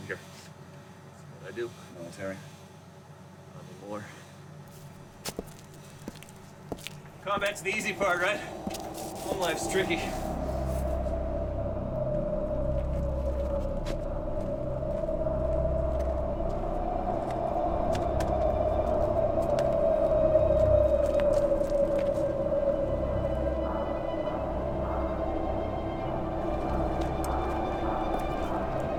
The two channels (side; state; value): both; identical; correlation 1.00